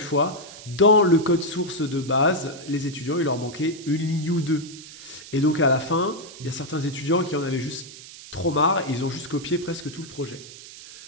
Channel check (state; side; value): noise; right; hiss, 16 dB below the sound